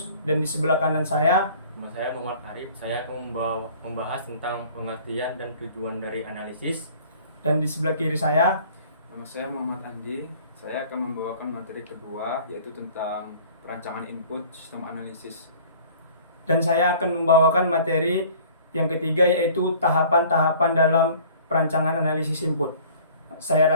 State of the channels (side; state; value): both; inverted; correlation -0.50